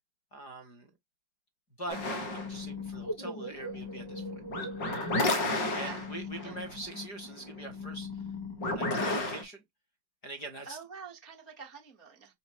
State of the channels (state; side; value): late; right; 5.4 ms